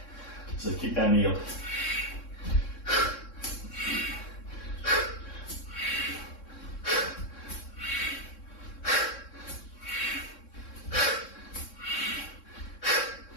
So keep that knee up.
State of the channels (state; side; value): late; right; 3.6 ms